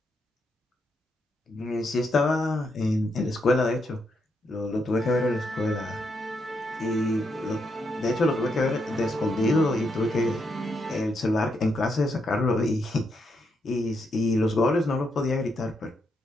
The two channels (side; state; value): both; normal; correlation 0.80